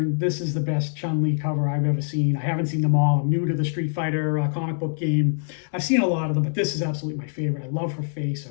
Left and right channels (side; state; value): right; silent; 62 dB below the other